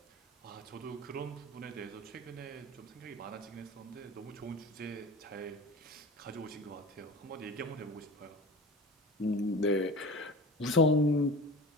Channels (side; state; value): both; normal; correlation 0.34